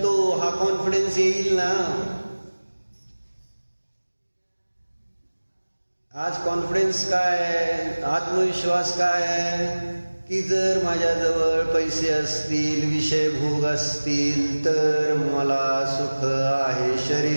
हा कॉन्फिडन्स येईल ना. आज कॉन्फिडन्स काय, आत्मविश्वास काय की जर माझ्याजवळ पैसे असतील, विषय भोग असतील तर मला सुख आहे,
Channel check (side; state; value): both; inverted; correlation -1.00